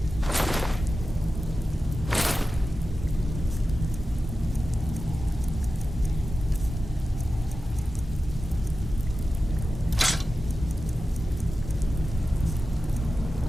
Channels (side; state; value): both; normal; correlation 0.93